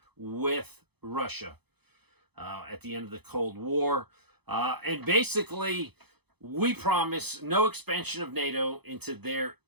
with Russia at the end of the Cold War. And basically, we promised no expansion of NATO into their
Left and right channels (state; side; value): late; left; 0.98 ms